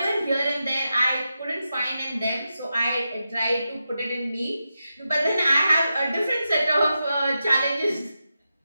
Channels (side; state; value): both; inverted; correlation -0.89